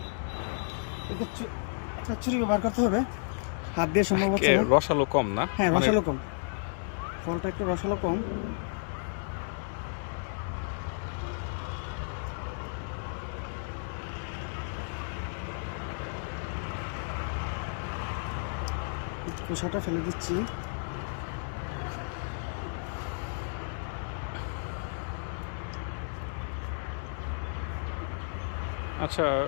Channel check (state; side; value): silent; right; digital silence